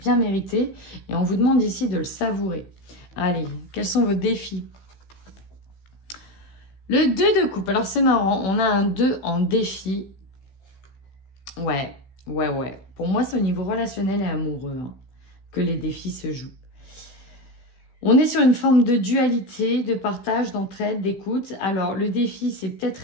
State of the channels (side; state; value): right; late; 16 ms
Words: mérité et on vous demande ici de le savourer. Allez, quels sont vos défis ? Le 2 de coupe. Alors, c'est marrant. On a un 2 en défi. Ouais. Ouais, ouais. Pour moi, c'est au niveau relationnel et amoureux hein, que les défis se jouent. On est sur une forme de dualité, de partage, d'entraide, d'écoute. Alors, le défi, c'est peut-être